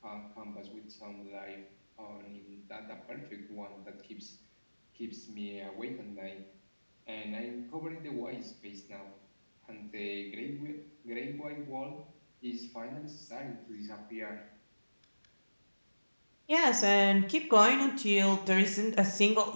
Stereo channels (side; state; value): both; inverted; correlation -1.00